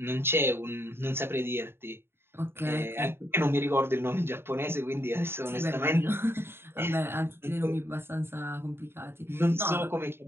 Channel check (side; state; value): left; late; 0.11 ms